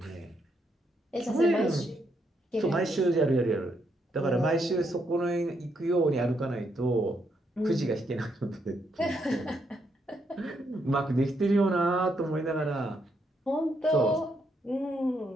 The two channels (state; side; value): normal; both; correlation 0.77